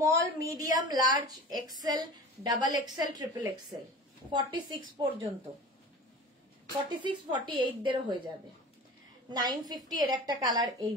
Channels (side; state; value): both; normal; correlation 0.37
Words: medium, large, XL, double XL, triple XL, 46 পর্যন্ত, 46, 48 দেরও হয়ে যাবে। 950 এর একটা কালার, এই